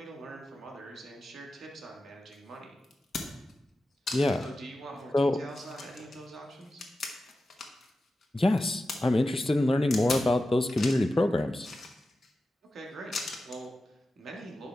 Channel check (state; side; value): normal; both; correlation 0.93